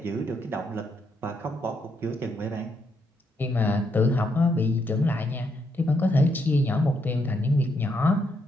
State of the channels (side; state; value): both; normal; correlation 0.76